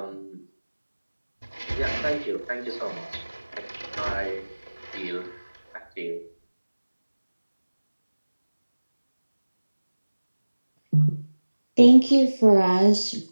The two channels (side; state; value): both; inverted; correlation -1.00